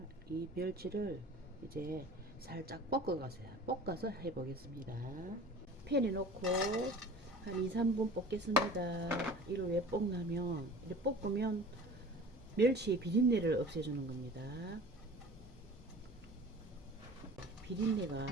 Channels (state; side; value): normal; both; correlation 0.42